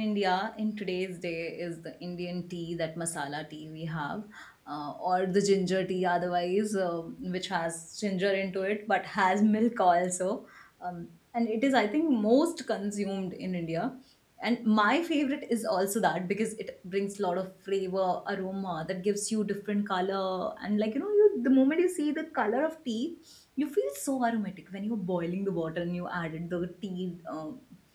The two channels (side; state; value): both; identical; correlation 1.00